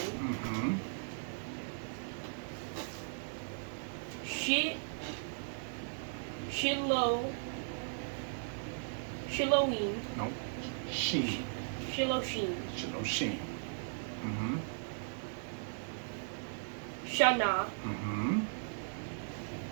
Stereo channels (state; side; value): silent; left; 53 dB below the other